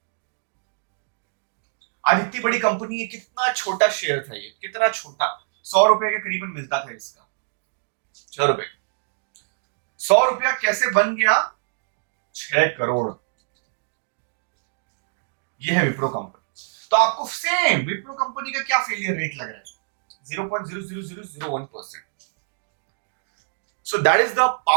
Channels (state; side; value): silent; left; digital silence